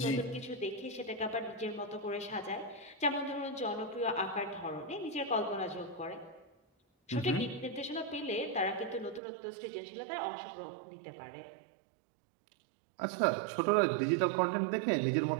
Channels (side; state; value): left; drops out; at 9.2 s